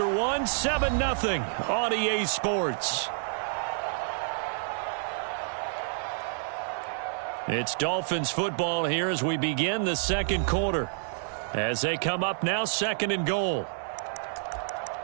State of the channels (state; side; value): silent; left; digital silence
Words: 1, 7-0 on EA Sports. It's Dolphins football here as we begin the 2nd quarter. As they come up now, 2nd and goal.